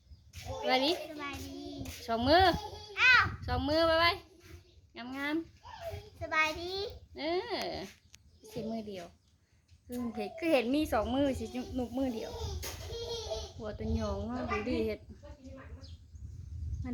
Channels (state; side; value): identical; both; correlation 1.00